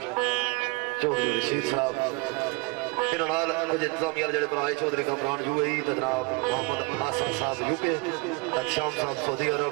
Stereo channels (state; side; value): quieter; left; 26.6 dB